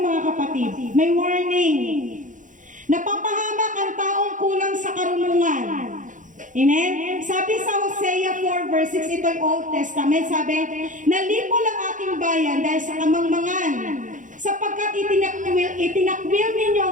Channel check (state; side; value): late; left; 0.37 ms